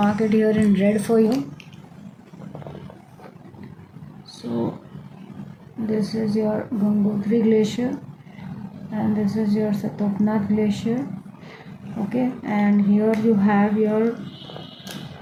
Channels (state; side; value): identical; both; correlation 1.00